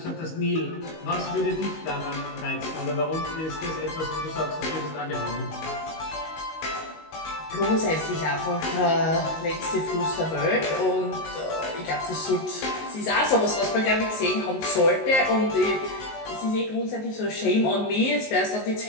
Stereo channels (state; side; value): late; right; 19 ms